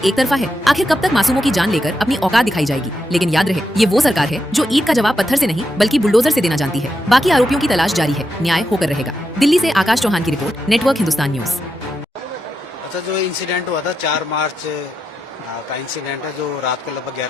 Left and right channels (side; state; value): both; normal; correlation 0.85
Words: तरफा है? आखिर कब तक मासूमों की जान लेकर अपनी औकात दिखाई जाएगी? लेकिन याद रहे, ये वो सरकार है जो ईद का जवाब पत्थर से नहीं बल्कि बुलडोजर से देना जानती है। बाकी आरोपियों की तलाश जारी है, न्याय होकर रहेगा। दिल्ली से आकाश चौहान की रिपोर्ट, नेटवर्क हिंदुस्तान न्यूज। अच्छा, जो इंसिडेंट हुआ था 4 मार्च का इंसिडेंट है, जो रात को लगभग